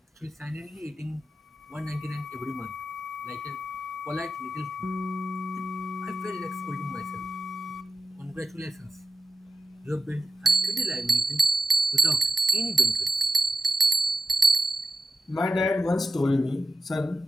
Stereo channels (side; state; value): both; normal; correlation 0.92